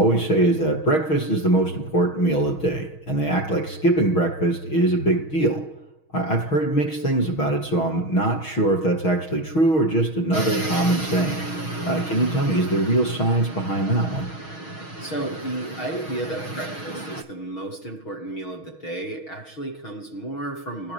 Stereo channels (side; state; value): right; late; 6.3 ms